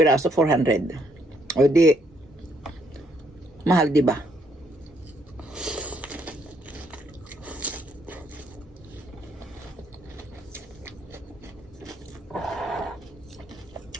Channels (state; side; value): normal; both; correlation 0.71